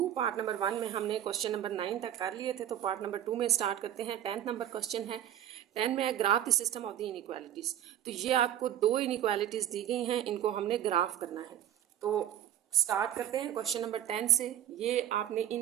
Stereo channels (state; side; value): quieter; left; 11.4 dB